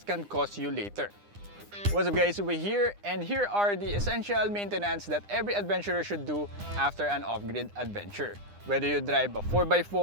cost you later. What's up guys, Uwe here, and here are the essential maintenance that every adventurer should do after an off-grid adventure. Whether you drive a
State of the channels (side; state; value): left; late; 9.9 ms